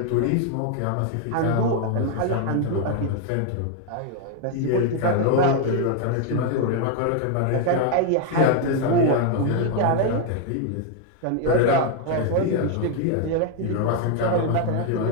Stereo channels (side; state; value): both; different; correlation 0.00